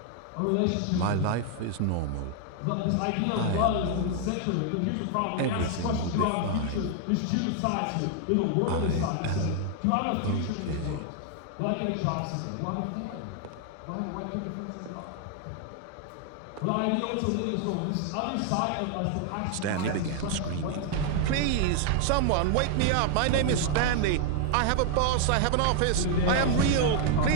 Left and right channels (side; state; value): both; different; correlation 0.00